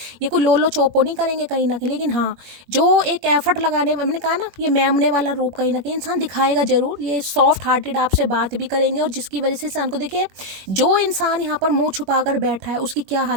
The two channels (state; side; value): late; left; 21 ms